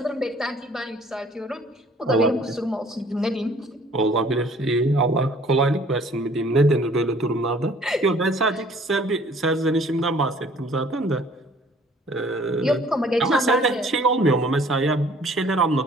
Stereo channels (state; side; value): normal; both; correlation 0.55